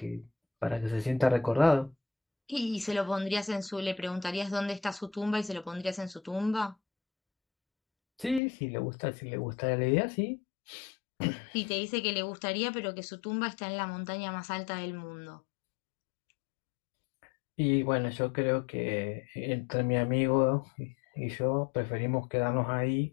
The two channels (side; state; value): right; drops out; at 8.4 s